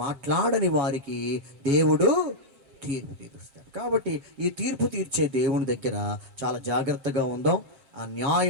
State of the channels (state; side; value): late; left; 7.5 ms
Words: మాట్లాడని వారికి దేవుడు తీర్పు తీరుస్తాడు. కాబట్టి ఈ తీర్పు తీర్చే దేవుని దగ్గర చాలా జాగ్రత్తగా ఉందాం. ఆ